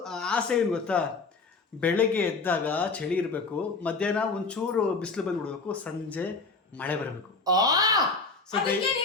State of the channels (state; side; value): quieter; right; 4.0 dB